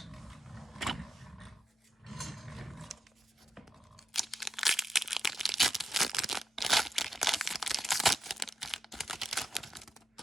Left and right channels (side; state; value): both; normal; correlation 0.86